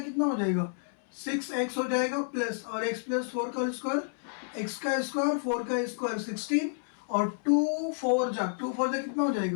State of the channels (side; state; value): right; silent; 58 dB below the other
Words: हो जाएगा 6x हो जाएगा प्लस, और x+4 का होल स्क्वायर x का स्क्वायर 4 का स्क्वायर 16 और 2 4 जा कितना हो